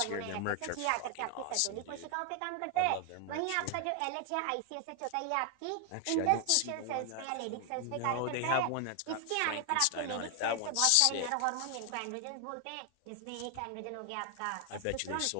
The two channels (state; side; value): different; both; correlation 0.00